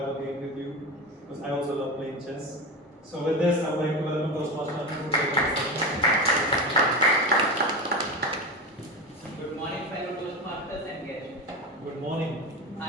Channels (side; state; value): both; normal; correlation 0.22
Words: a game with you because I also love playing chess. So with this, I would like to welcome Toastmaster Anu to Good morning, fellow Toastmasters and guests. Good morning.